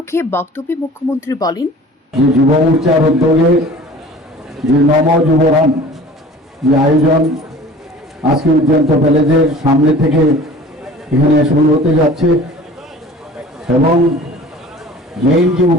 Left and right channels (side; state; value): both; normal; correlation 0.44